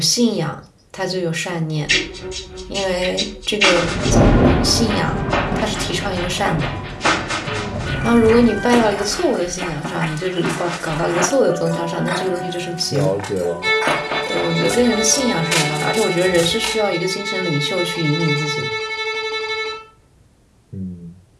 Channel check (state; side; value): identical; both; correlation 1.00